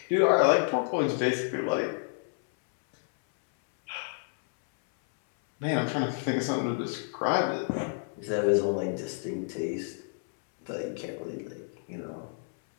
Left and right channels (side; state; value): right; silent; 58 dB below the other